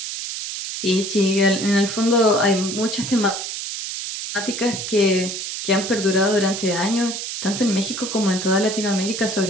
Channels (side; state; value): right; noise; hiss, 6 dB below the sound